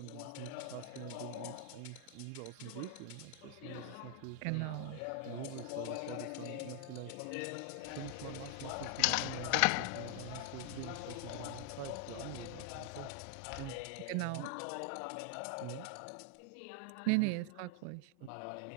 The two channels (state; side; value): different; both; correlation 0.00